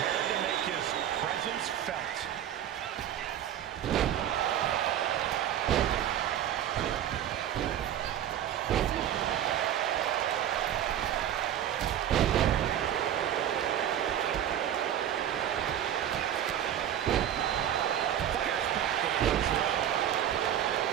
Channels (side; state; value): left; quieter; 10.6 dB